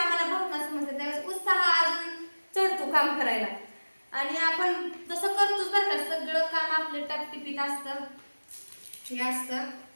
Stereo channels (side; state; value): both; inverted; correlation -1.00